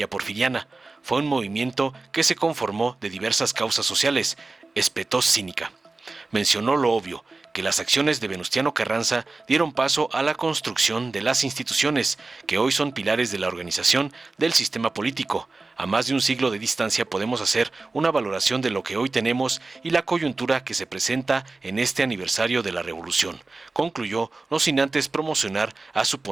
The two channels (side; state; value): left; quieter; 3.5 dB